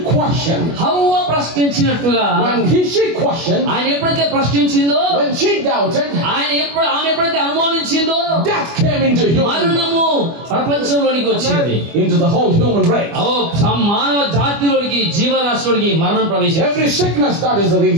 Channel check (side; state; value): left; late; 25 ms